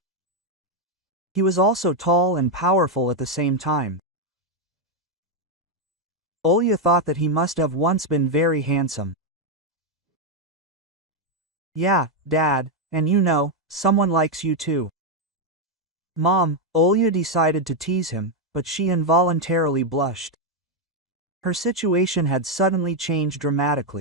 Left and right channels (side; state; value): both; normal; correlation 0.02